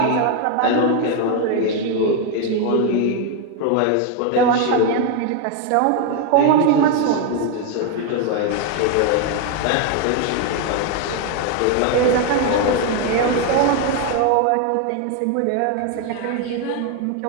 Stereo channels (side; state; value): both; different; correlation 0.01